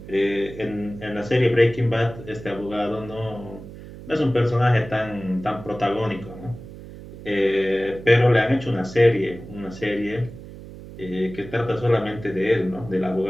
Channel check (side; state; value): right; noise; hum, 15 dB below the sound